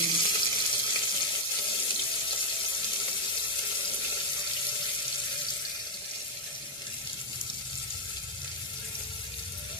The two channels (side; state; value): both; normal; correlation 0.00